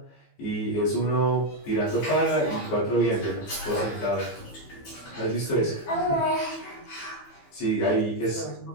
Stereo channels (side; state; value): right; late; 15 ms